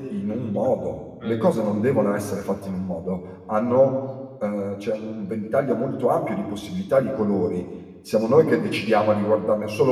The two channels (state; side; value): identical; both; correlation 1.00